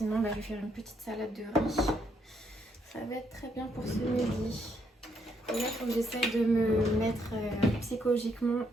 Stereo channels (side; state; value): both; normal; correlation 0.74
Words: je vais faire une petite salade de riz. Ça va être très bien pour ce midi. Et là il faut que j'essaye de me mettre psychologiquement